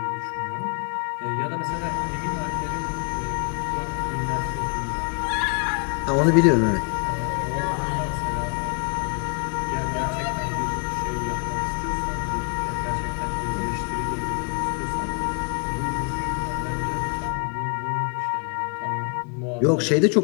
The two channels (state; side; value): quieter; right; 38.6 dB